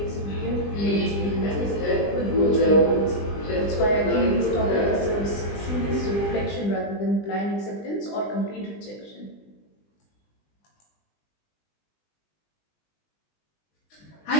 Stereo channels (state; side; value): late; right; 20 ms